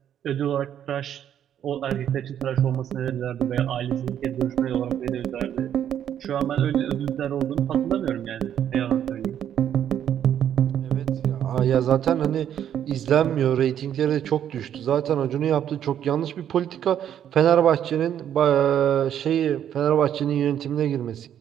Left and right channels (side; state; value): left; quieter; 9.9 dB